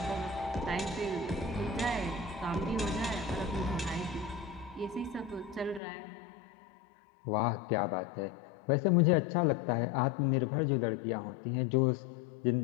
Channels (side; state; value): right; drops out; at 5.8 s